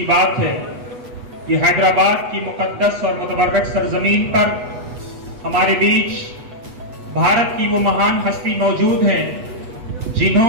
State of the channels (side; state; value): left; late; 8.2 ms